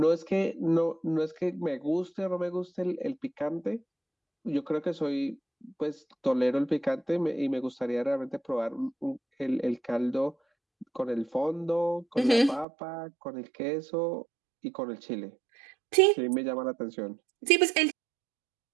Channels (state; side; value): drops out; left; at 12.7 s